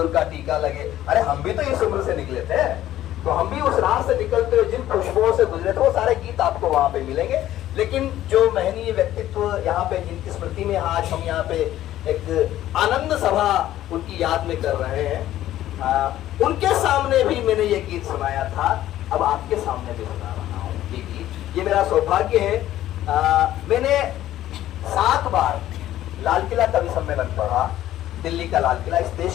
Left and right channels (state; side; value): quieter; right; 13.3 dB